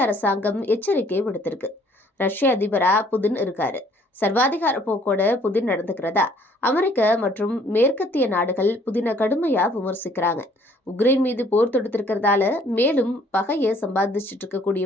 அரசாங்கம் எச்சரிக்கை விடுத்திருக்கு. ரஷ்ய அதிபரா புதின் இருக்காரு. சர்வாதிகார போக்கோட புதின் நடந்துக்கிறதா அமெரிக்க மற்றும் மேற்கத்திய நாடுகள் புதினை கடுமையா விமர்சிக்கிறாங்க. உக்ரைன் மீது போர் தொடுத்திருக்கிறதால மேலும் பகையை சம்பாதிச்சுட்டு இருக்கக்கூடிய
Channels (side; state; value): both; normal; correlation 0.60